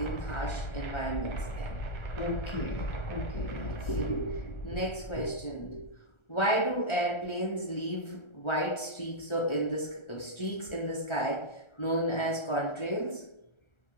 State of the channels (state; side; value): late; right; 1.3 ms